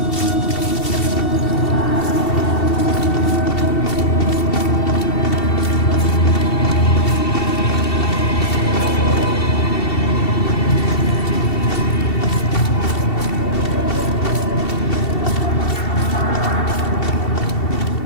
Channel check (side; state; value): right; late; 2.7 ms